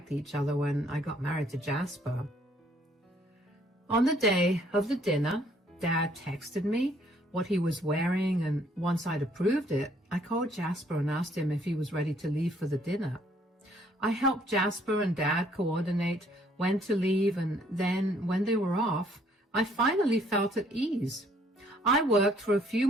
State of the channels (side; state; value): both; normal; correlation 0.64